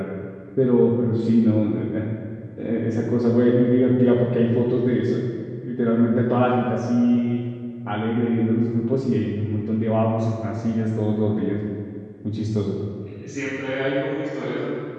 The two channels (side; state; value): both; identical; correlation 1.00